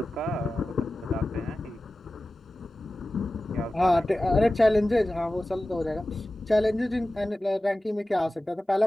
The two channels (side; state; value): both; normal; correlation 0.95